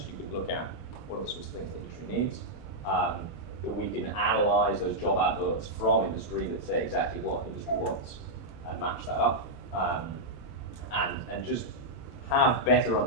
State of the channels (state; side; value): normal; both; correlation -0.06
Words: you can look at what are the sorts of things the industry needs. That we can analyze those job adverts from industry that say exactly what industry wants and match that up. And just have better